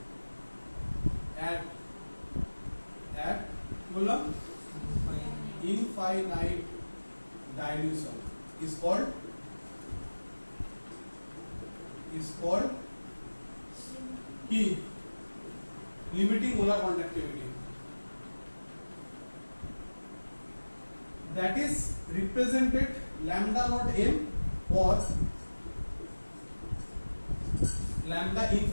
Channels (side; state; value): both; inverted; correlation -1.00